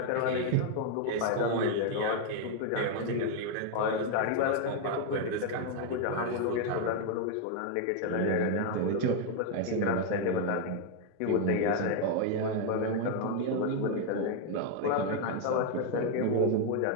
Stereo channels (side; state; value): both; different; correlation 0.00